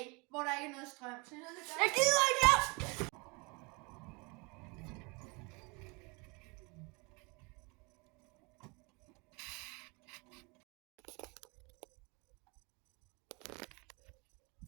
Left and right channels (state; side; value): quieter; left; 28.9 dB